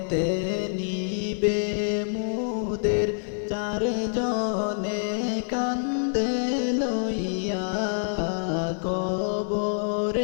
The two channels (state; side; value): silent; right; digital silence